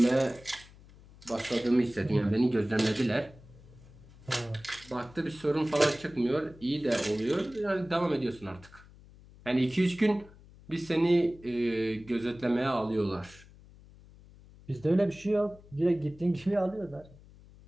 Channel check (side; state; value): left; noise; hum, 22 dB below the sound